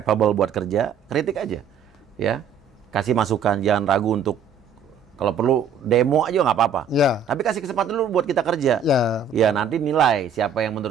buat kerja, kritik aja. Ya. Kasih masukan, jangan ragu untuk kalau perlu demo aja nggak apa-apa. Ya. Tapi kasih kesempatan dulu buat kita kerja. Ya. Ya, nanti nilai siapa yang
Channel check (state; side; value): quieter; left; 6.2 dB